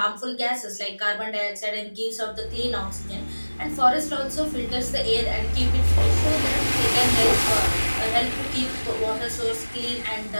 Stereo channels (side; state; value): both; inverted; correlation -1.00